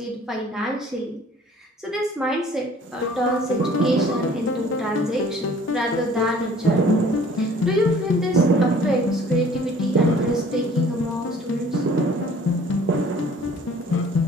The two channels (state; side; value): normal; both; correlation 0.52